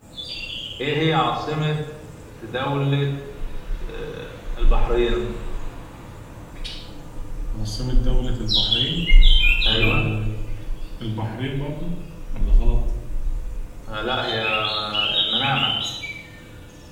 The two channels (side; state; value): both; identical; correlation 1.00